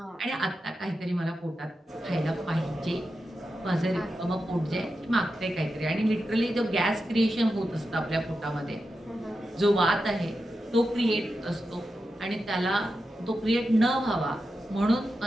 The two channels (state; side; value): normal; both; correlation 0.90